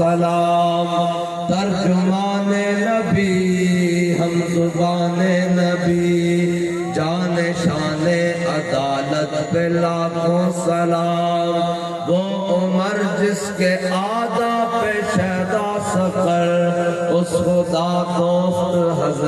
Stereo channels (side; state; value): both; identical; correlation 1.00